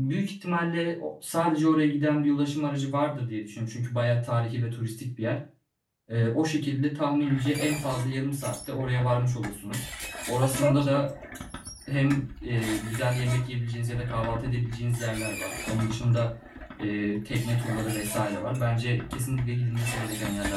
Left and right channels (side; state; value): both; identical; correlation 1.00